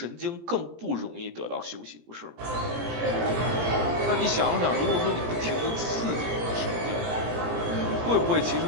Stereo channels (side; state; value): left; late; 17 ms